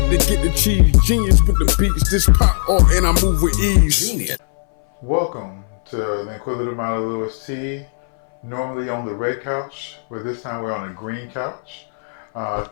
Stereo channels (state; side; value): silent; right; 62 dB below the other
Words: to get the cheese. Genius with the beats, this pop off and I move with ease. Genius. Welcome to the Inquisitive Mind of Lewis T. Normally on the red couch, but this time we're on a green couch.